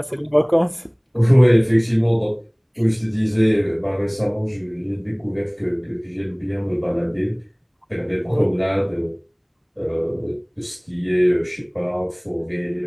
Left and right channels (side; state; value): both; identical; correlation 1.00